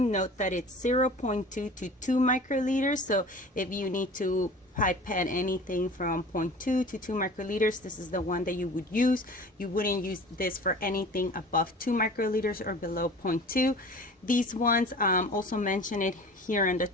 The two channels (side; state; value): both; normal; correlation 0.42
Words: Note that it's 0.2 to 2 microliters. So if you need to pipette anything from 0.2 to 2 microliters, this is the one that you would use. You wouldn't use this for anything above 2 microliters or below 0.2. These ones also mention it here on the